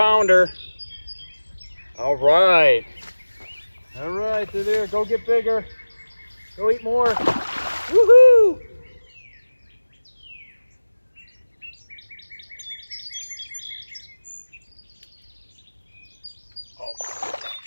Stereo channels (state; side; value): inverted; both; correlation -1.00